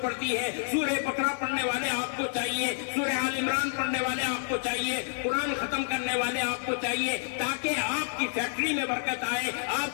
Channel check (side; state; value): right; silent; digital silence